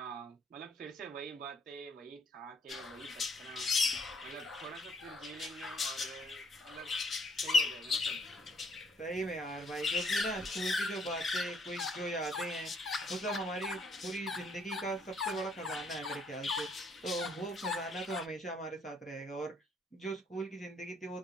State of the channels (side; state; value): both; normal; correlation 0.65